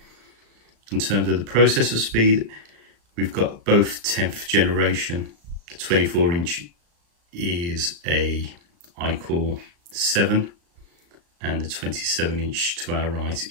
In terms of the processor speed, we've got both 10th generation. The 24-inch is a iCore 7, and the 27-inch to our right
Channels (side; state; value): left; late; 35 ms